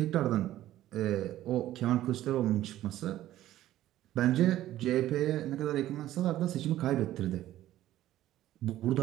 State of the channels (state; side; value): quieter; left; 13.8 dB